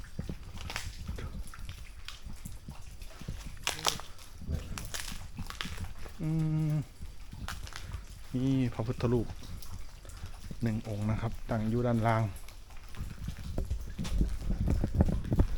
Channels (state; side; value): identical; both; correlation 1.00